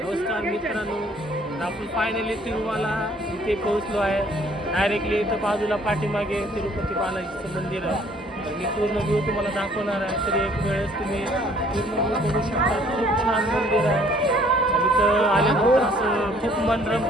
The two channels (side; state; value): both; normal; correlation 0.59